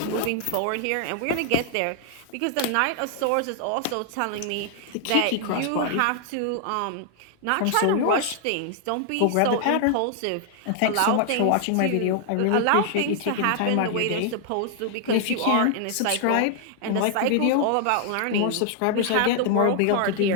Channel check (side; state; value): both; different; correlation 0.00